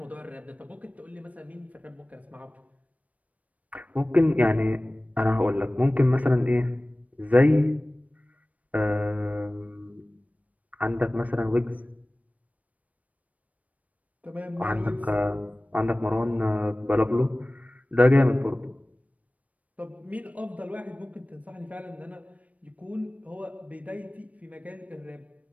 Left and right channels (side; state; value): left; late; 0.069 ms